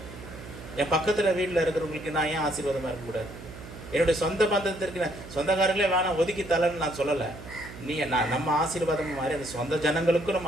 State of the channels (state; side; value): noise; right; hum, 14 dB below the sound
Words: என் பக்கத்தில் வீட்டில் இருக்கிறவங்களுக்கு நான் ஏன் ஆசீர்வாதமாக இருக்கக்கூடாது? என்னுடைய சொந்த பந்தத்திற்கு சொந்தக்காரங்களே வேணாம் ஒதுக்கி தரலன்னு நான் சொல்லலை. நம்ம ஆசீர்வாதம் மாறி அந்த சொந்த ஜனங்களுக்கும்